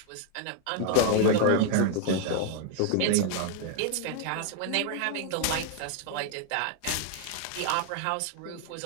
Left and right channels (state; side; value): different; both; correlation 0.00